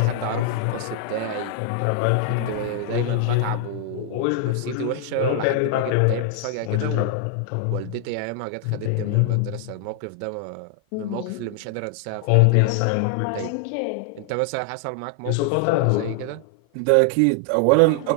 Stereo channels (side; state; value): both; different; correlation 0.00